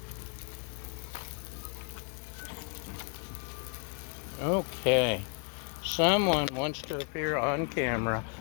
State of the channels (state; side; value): quieter; right; 39.2 dB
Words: Okay. Someone wants to appear on camera.